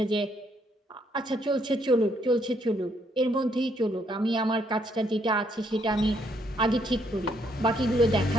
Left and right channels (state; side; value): normal; both; correlation 0.71